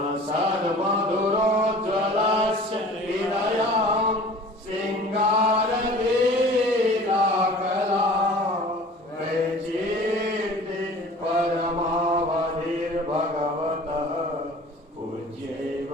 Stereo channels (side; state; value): both; normal; correlation 0.44